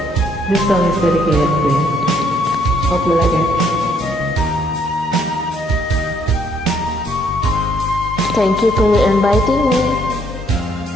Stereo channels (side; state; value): both; normal; correlation 0.67